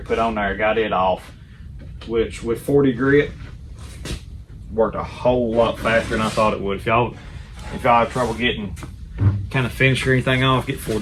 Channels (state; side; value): identical; both; correlation 1.00